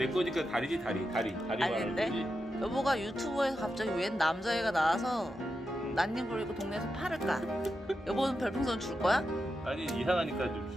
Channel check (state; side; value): normal; both; correlation 0.88